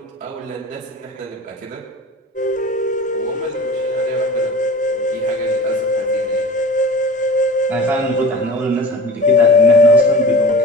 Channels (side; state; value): both; normal; correlation 0.37